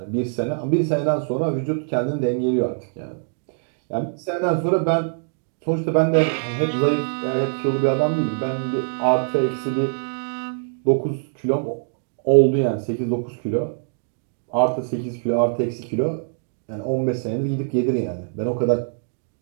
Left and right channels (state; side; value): silent; left; digital silence